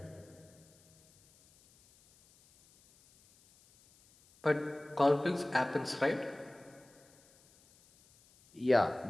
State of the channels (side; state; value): left; noise; hiss, 29 dB below the sound